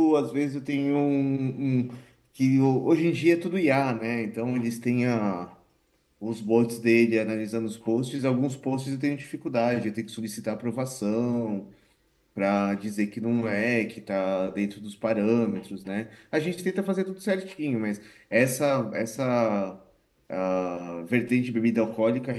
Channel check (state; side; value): identical; both; correlation 1.00